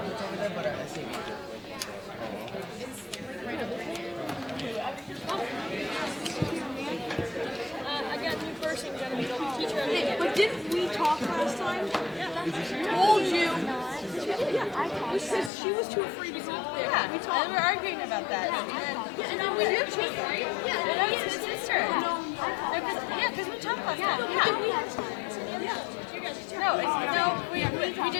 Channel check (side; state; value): right; drops out; at 15.5 s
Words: over there, but our SAB. But didn't we talk last time? Told you. We said she was too afraid to go up there. Yeah, we talked. and we're arguing about that. And then we do change, right? Yeah, and then it's sister. Yeah, because we talked last time. Yeah. No, we